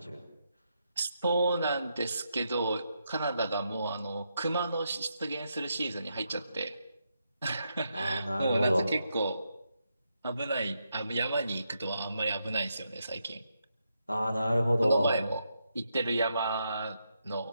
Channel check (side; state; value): both; inverted; correlation -0.82